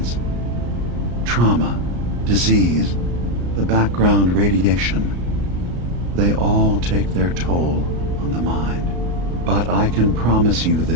Trauma, disease, the background radiation. They all take their toll on the mind. But I can promise you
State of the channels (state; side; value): late; left; 34 ms